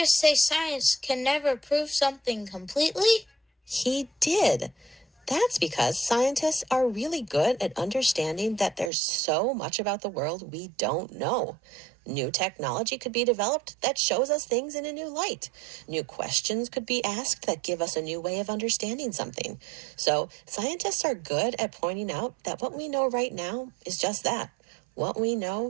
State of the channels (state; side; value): drops out; left; at 8.9 s